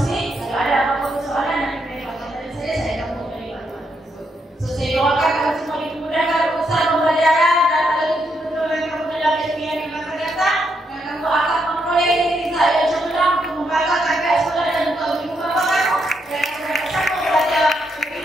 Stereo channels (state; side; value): normal; both; correlation 0.78